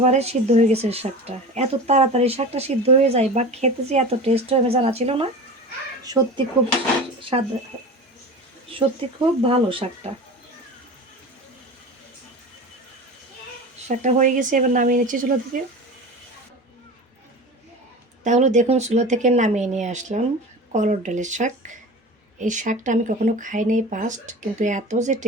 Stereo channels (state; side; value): normal; both; correlation 0.33